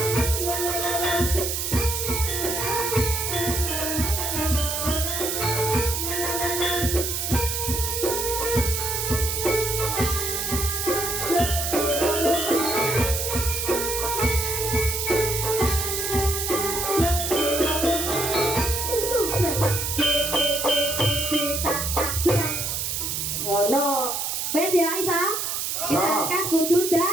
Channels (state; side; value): noise; right; hiss, 2 dB below the sound